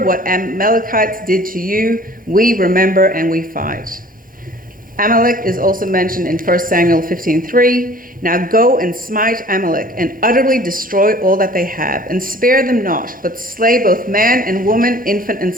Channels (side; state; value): both; normal; correlation 0.49